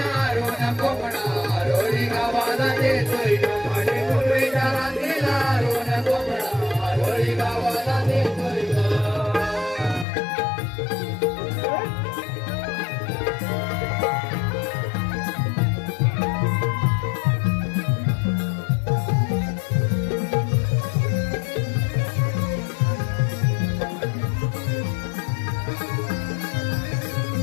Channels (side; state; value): right; drops out; at 10.1 s